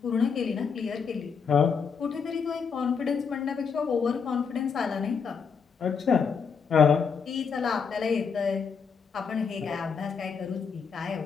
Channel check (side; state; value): right; quieter; 6.0 dB